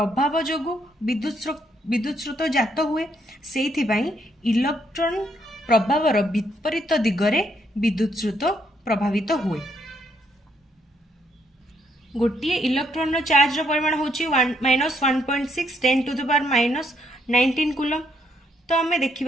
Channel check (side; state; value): both; normal; correlation 0.73